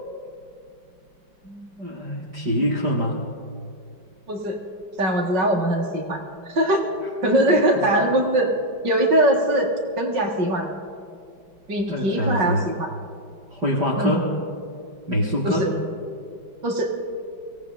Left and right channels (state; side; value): late; left; 5.4 ms